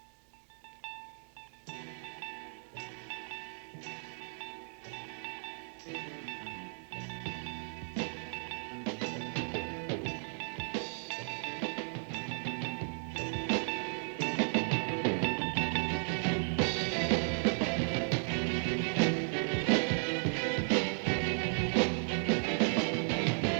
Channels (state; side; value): silent; left; digital silence